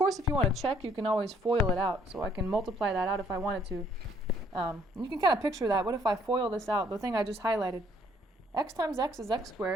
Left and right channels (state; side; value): normal; both; correlation 0.64